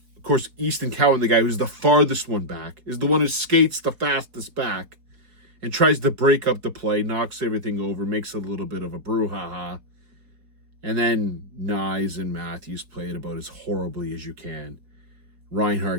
Of course, Easton Cowan, the guy who's the farthest one back, is the one who skates the fastest back and tries to break up the play, knocks everything over, makes a little bit of a brouhaha. And then Nyes and Matthews play it about as horribly as you can.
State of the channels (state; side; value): late; left; 4.5 ms